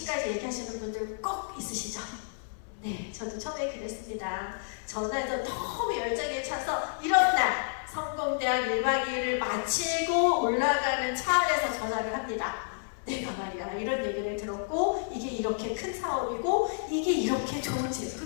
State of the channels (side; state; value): right; silent; 58 dB below the other